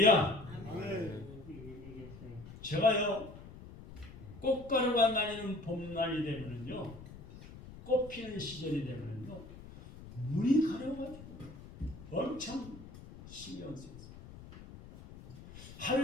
제가요 꽃가루가 날리는 봄날이 되면은요, 꽃 피는 시절이 되면은요, 눈이 가려가지고 엄청 신경 쓰여요.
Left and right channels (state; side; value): noise; left; rumble, 16 dB below the sound